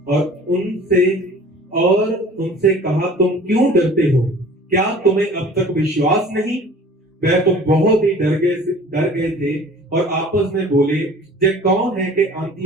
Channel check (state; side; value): normal; both; correlation 0.46